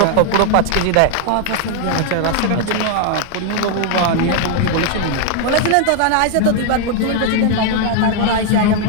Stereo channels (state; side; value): different; both; correlation 0.00